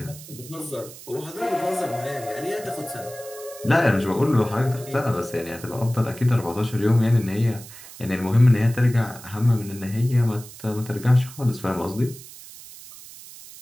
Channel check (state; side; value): noise; right; hiss, 17 dB below the sound